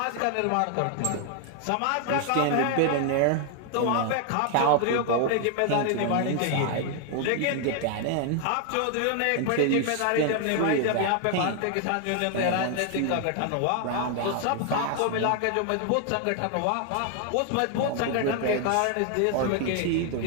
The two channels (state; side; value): different; both; correlation 0.00